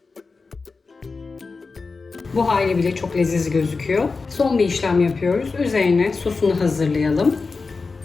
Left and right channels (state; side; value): quieter; right; 4.3 dB